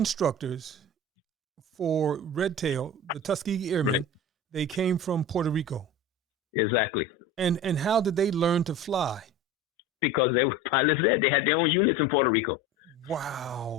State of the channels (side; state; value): both; normal; correlation 0.33